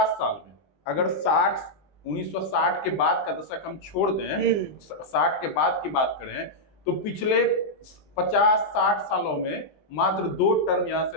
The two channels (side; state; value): right; late; 20 ms